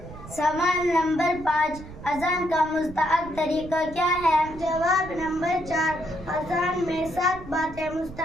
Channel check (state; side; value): noise; right; rumble, 15 dB below the sound